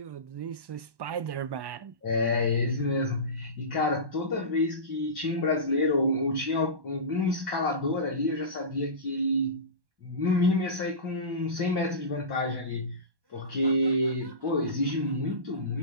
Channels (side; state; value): left; late; 1.1 ms